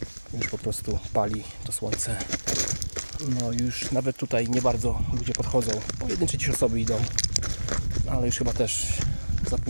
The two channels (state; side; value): inverted; both; correlation -1.00